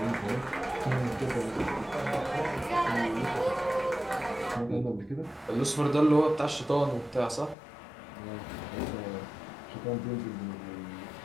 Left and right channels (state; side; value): drops out; right; at 7.6 s